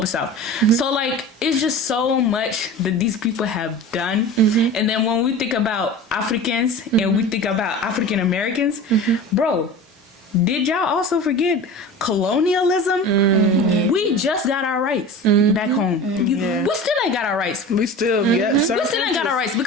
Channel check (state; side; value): normal; both; correlation 0.35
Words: South. So like, it's just so much that these people have done. And then when we think about Africans and we think about African Americans, bro, did y'all also forget colonialism? We just got our rights back home. We still ain't got our rights. We still ain't got our rights